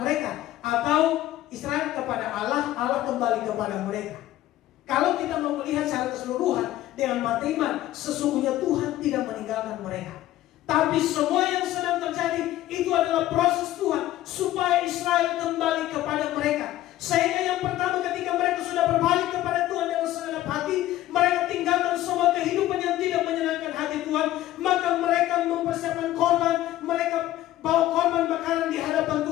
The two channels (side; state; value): right; quieter; 14.5 dB